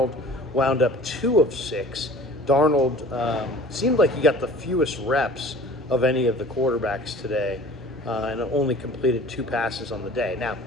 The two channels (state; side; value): normal; both; correlation 0.45